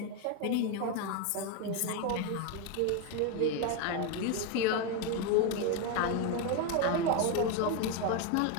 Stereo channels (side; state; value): both; different; correlation 0.02